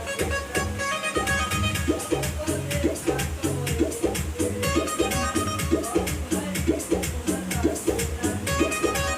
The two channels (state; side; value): identical; both; correlation 1.00